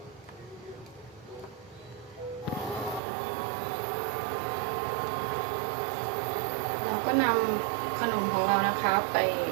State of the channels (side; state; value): left; drops out; at 3.0 s